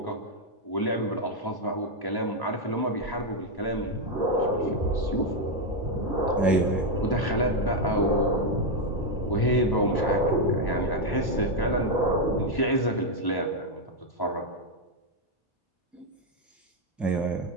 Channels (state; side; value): late; right; 1.1 ms